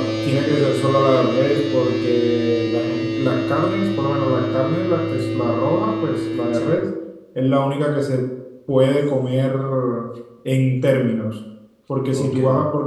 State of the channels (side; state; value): both; identical; correlation 1.00